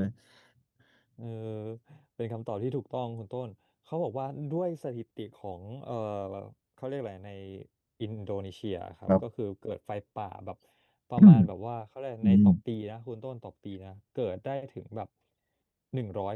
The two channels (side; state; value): both; identical; correlation 1.00